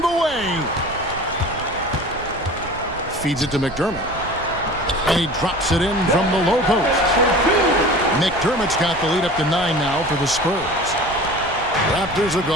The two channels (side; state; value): right; noise; rumble, 16 dB below the sound